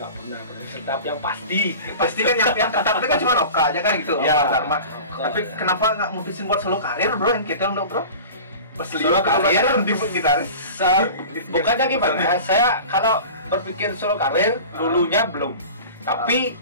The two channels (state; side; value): inverted; both; correlation -0.37